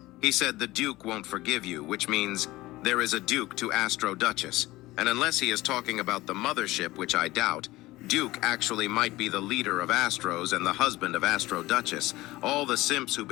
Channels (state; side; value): quieter; right; 18.6 dB